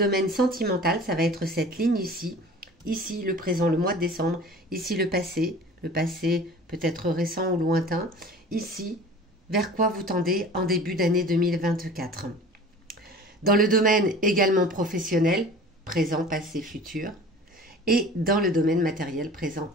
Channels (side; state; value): both; normal; correlation 0.42